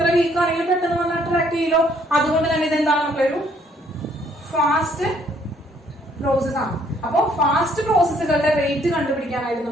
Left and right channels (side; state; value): both; normal; correlation 0.65